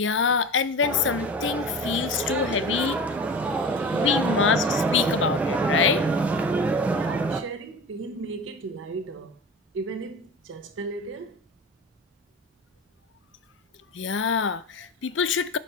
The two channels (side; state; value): both; normal; correlation 0.33